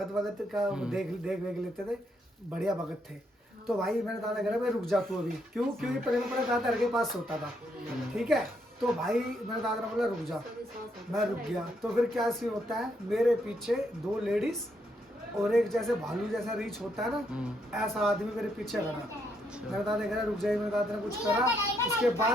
का देख लेते थे, बढ़िया भगत थे। तो भाई मेरे दादा कह रहे भाई रुक जा तू अभी, क्योंकि पहले मैं दादा के पास सोता था। ठीक है, तो भाई मेरे दादा ने बोला रुक जा, मैं रुक गया। तो फिर क्या सीन होता है, मेरे पीछे 2 लेडीज और एक जैसे भालू जैसा रीच होता है ना, ऐसा आदमी मेरे पीछे खड़ा। मेरे दादा कह रहा रुक जाइए, मेरे दादा ने कुछ करा, उसके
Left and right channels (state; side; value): normal; both; correlation 0.76